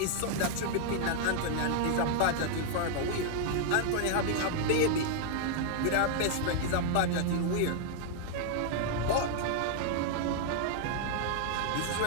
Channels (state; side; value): different; both; correlation 0.00